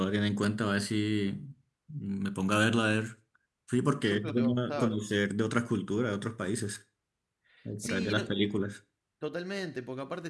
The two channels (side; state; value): both; identical; correlation 1.00